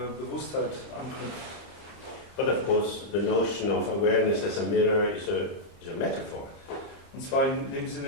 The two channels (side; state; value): right; late; 30 ms